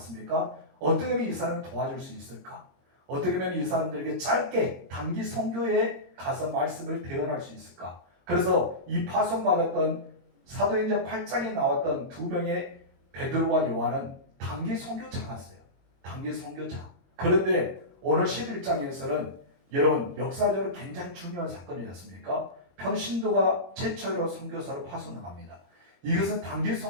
어떻게 하면 이 사람을 도와줄 수 있을까? 어떻게 하면 이 사람들에게 짧게 단기 선교에 가서 말씀을 대언할 수 있을까? 그래서 이 파송받았던 사도행전 8장에 나왔던 두 명의 베드로와 요한은 단기 선교차였어요. 단기 선교차. 그런데 오늘 11장에서는 여러분 역사적으로 굉장히 중요한 사건이지 않습니까? 평신도가 최초로 선교사를 파송합니다. 이것은 단기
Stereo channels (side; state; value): left; late; 22 ms